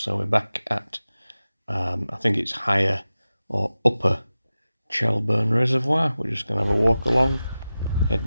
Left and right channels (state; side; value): inverted; both; correlation -0.94